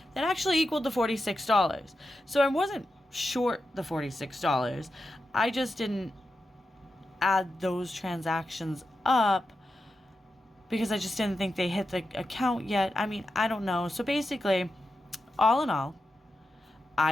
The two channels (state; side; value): normal; both; correlation 0.89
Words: that actually equaled the $46. So I wasn't short the $46. I just didn't add those transactions up because I just didn't think they hit the account yet. I mean, I don't know. So basically, all in all,